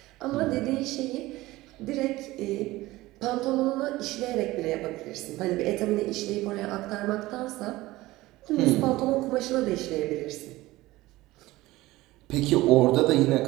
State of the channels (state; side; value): quieter; left; 18.4 dB